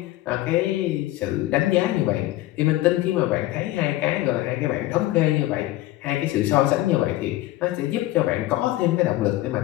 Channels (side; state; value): right; quieter; 16.4 dB